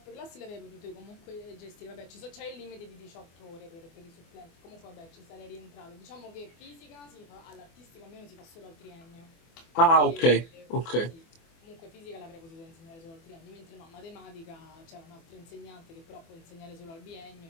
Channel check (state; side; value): late; right; 24 ms